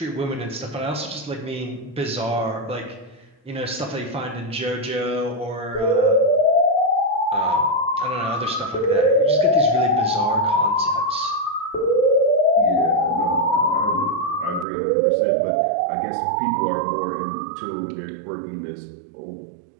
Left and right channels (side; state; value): left; drops out; at 14.7 s